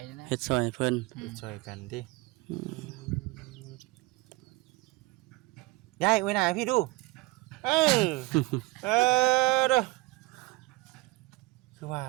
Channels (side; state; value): left; quieter; 21.6 dB